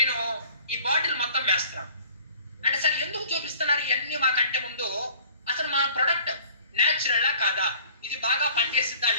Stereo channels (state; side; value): inverted; both; correlation -0.51